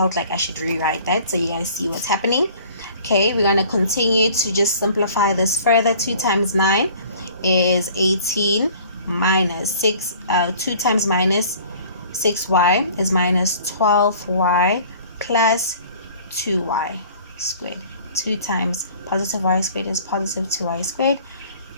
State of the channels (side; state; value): both; inverted; correlation -0.50